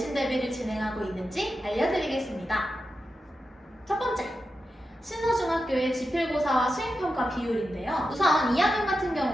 대비를 진행하고 있는지 알려드리겠습니다. 첫 번째, 신서중학교의 지필고사와 수행평가 비율인데요. 우선 2학년 같은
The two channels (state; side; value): normal; both; correlation 0.90